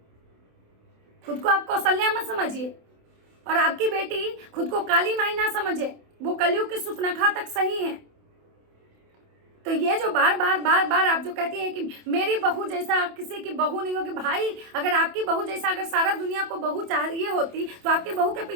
खुद को आप कौशल्या मत समझिए, और आपकी बेटी खुद को काली माई ना समझे, वो कलयुग की सुपनखा तक सही है। तो ये जो बार बार आप जो कहती हैं कि मेरी बहू जैसा किसी की बहू नहीं होगी, भाई अगर आपकी बहू जैसा अगर सारा दुनिया को बहू चाहिए होती तो आपकी बहू के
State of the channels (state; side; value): late; left; 27 ms